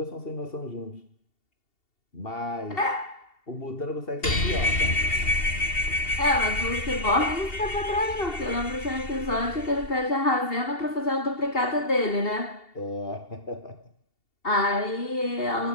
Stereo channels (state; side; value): late; right; 2.7 ms